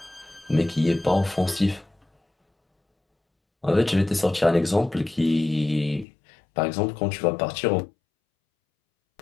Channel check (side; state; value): right; drops out; at 6.1 s